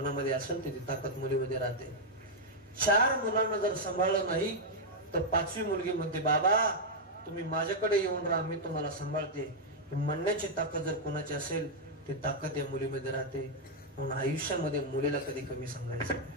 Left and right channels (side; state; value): both; normal; correlation -0.03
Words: असेल तर ती ताकद मुलीमध्ये राहते. 4 मुलांना जर सांभाळलं नाही तर 5वी मुलगी म्हणते बाबा तुम्ही माझ्याकडे येऊन राहा, मी तुम्हाला सांभाळते. म्हणण्याची ताकद जर कोणाची असेल ती ताकद या मुलीमध्ये राहते. म्हणून आयुष्यामध्ये मुलीला कधी कमी सांगायचं